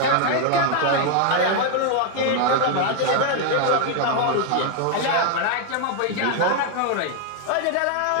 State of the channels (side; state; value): both; different; correlation 0.00